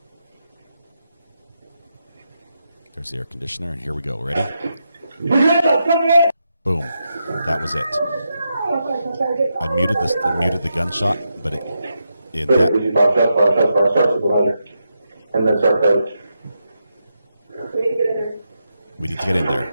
There's the air conditioner, and here we go. Ready? Boom. That was it. I muted the gunshot, but in that. And then start code. We need to get in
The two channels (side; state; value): both; inverted; correlation -0.85